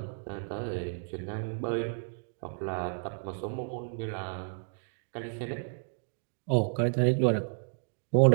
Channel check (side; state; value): left; silent; digital silence